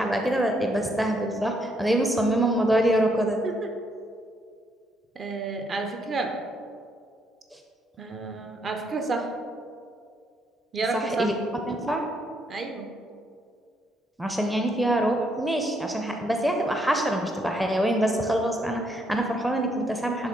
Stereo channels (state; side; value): normal; both; correlation 0.73